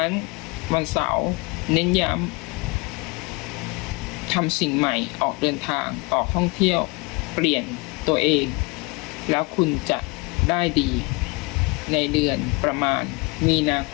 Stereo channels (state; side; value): quieter; right; 27.3 dB